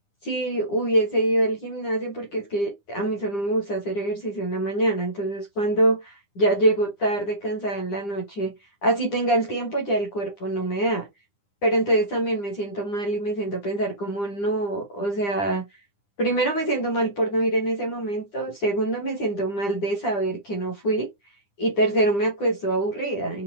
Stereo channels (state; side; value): late; right; 9.9 ms